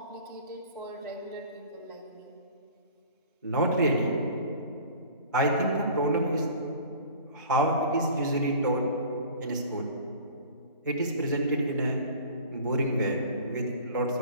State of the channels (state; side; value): inverted; both; correlation -0.44